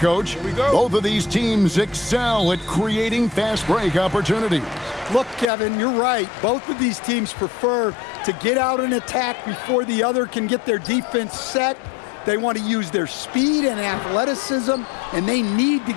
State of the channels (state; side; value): drops out; right; at 5.5 s